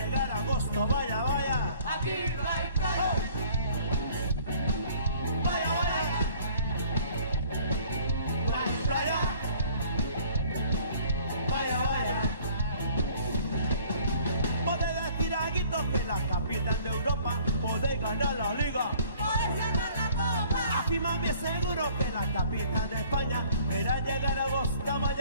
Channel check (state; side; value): inverted; both; correlation -0.54